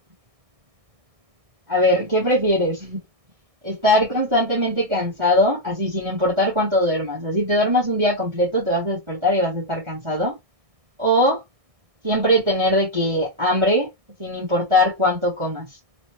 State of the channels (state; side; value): late; left; 1.6 ms